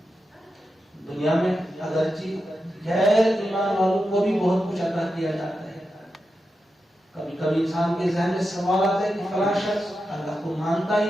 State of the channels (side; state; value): both; normal; correlation 0.89